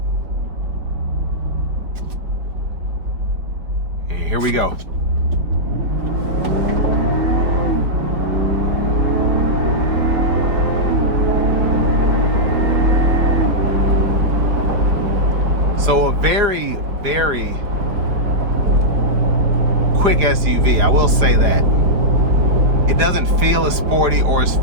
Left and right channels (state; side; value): late; left; 4.9 ms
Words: And here we go. So a very, very quick SUV, I will say that. It doesn't feel as sporty or as